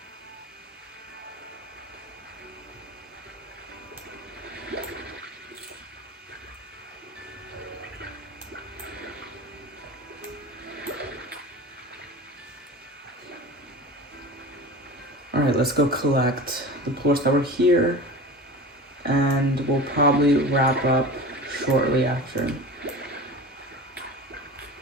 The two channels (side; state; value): both; normal; correlation 0.33